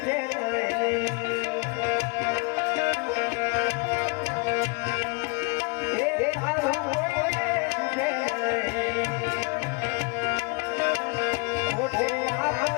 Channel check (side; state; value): right; quieter; 31.0 dB